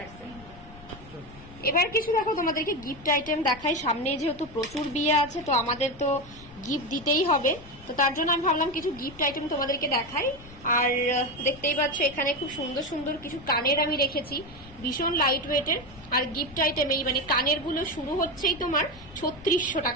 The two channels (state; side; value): noise; left; rumble, 19 dB below the sound